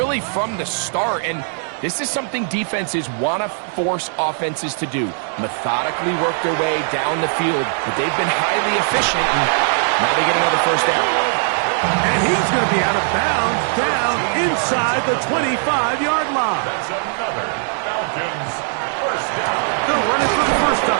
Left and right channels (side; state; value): left; silent; 59 dB below the other